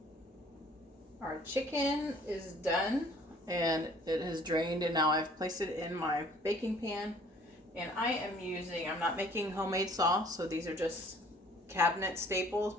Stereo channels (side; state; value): both; normal; correlation 0.55